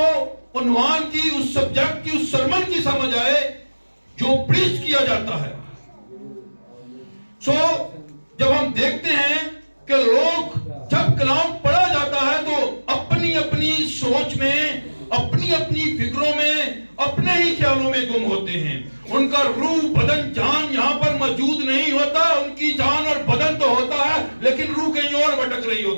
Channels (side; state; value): both; inverted; correlation -1.00